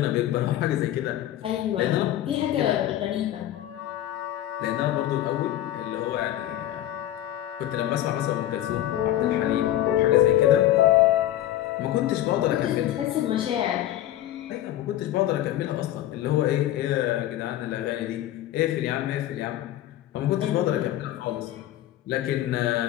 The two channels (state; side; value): quieter; right; 13.1 dB